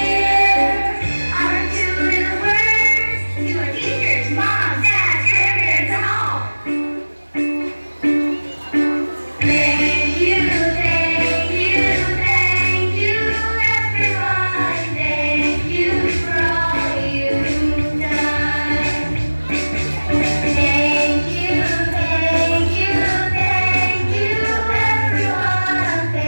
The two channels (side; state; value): both; inverted; correlation -1.00